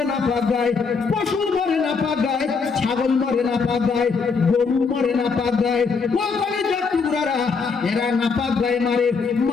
না পাক গায়, পশু মরে না পাক গায়, ছাগল মরে না পাক গায়, গরু মরে না পাক গায়, টুকরারা এরা না পাক গায়ে মারে।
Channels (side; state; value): right; quieter; 5.1 dB